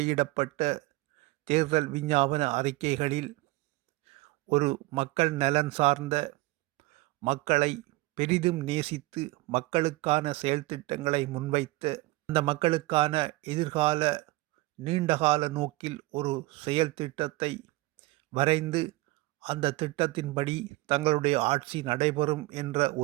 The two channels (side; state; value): left; quieter; 20.9 dB